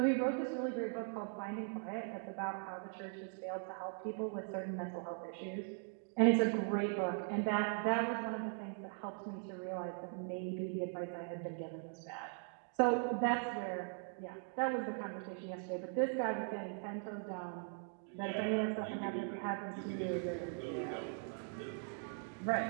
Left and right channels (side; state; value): left; silent; 51 dB below the other